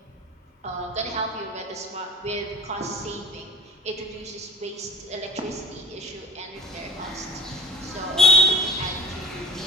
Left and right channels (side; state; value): both; normal; correlation 0.40